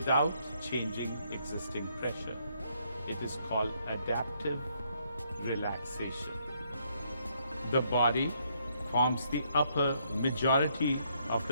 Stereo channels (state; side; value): inverted; both; correlation -0.72